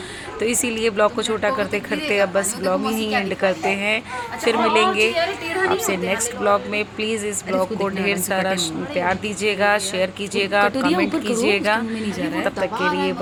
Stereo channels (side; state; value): both; identical; correlation 1.00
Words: तो इसीलिए ब्लॉग को छोटा करते करते अब बस ब्लॉग ही एंड करते हैं। फिर मिलेंगे आपसे नेक्स्ट ब्लॉग में। प्लीज़ इस ब्लॉग को ढेर सारा प्यार दीजिएगा, शेयर कीजिएगा, कमेंट कीजिएगा। तब तक के लिए